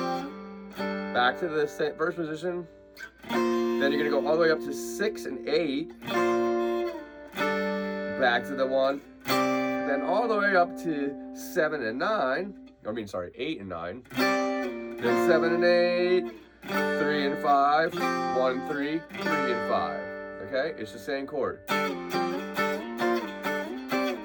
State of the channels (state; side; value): identical; both; correlation 1.00